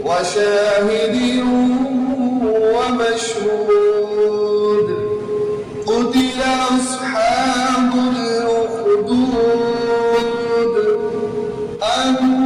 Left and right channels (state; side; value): identical; both; correlation 1.00